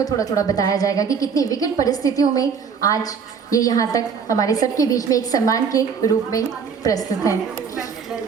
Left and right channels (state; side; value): quieter; left; 6.3 dB